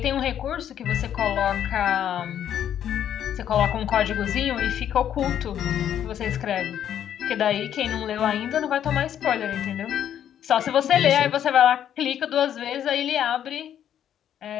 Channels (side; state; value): right; quieter; 10.0 dB